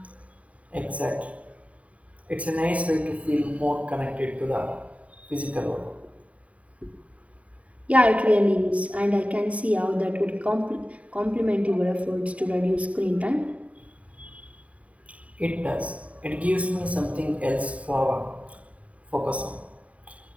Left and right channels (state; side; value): late; left; 0.067 ms